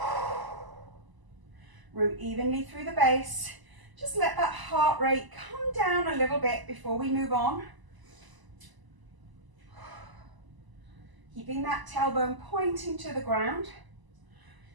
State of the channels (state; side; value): late; left; 1.0 ms